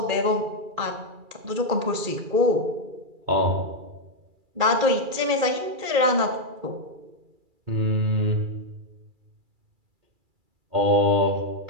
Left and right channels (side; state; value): left; late; 2.3 ms